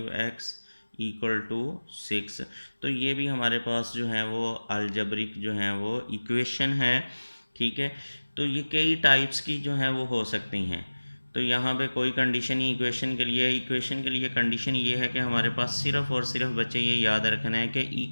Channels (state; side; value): inverted; both; correlation -1.00